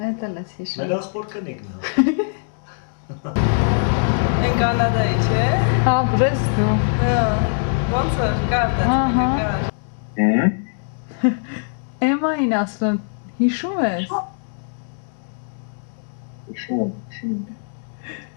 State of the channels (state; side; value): silent; right; digital silence